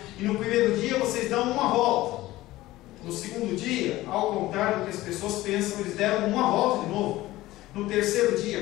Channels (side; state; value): right; quieter; 17.1 dB